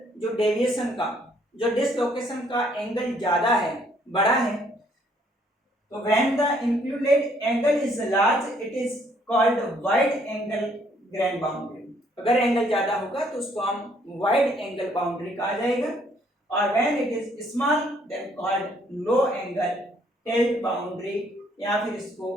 जो डेविएशन का, जो डिसलोकेशन का एंगल ज्यादा है, बड़ा है, तो when the included angle is large it is called wide angle grain boundary. अगर एंगल ज्यादा होगा तो उसको हम वाइड एंगल बाउंड्री कहा जाएगा, और when it is small then called low angle tilt boundary, या फिर इसको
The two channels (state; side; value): normal; both; correlation 0.66